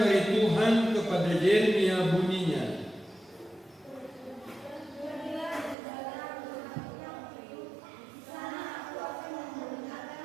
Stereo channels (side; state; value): left; drops out; at 5.8 s